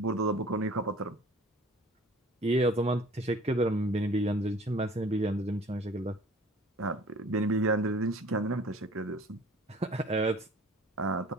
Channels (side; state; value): both; normal; correlation 0.48